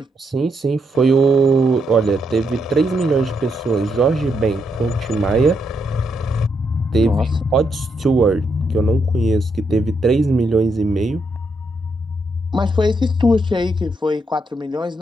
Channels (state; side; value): normal; both; correlation 0.79